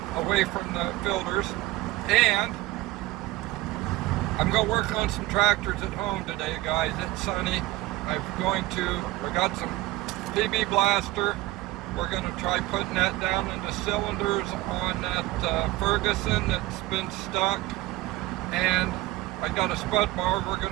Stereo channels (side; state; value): left; quieter; 18.3 dB